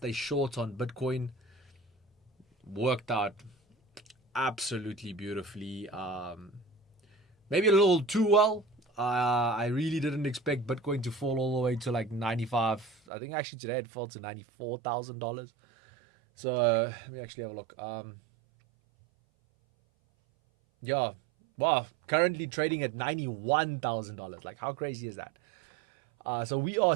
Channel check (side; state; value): left; drops out; at 13.0 s